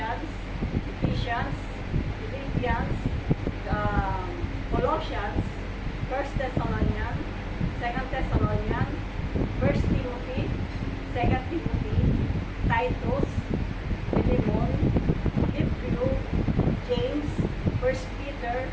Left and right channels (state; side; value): identical; both; correlation 1.00